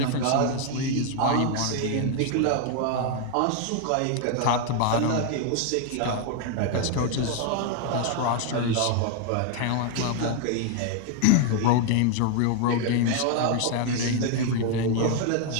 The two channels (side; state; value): both; different; correlation 0.00